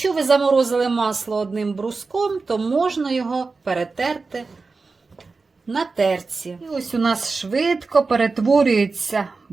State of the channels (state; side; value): quieter; left; 4.1 dB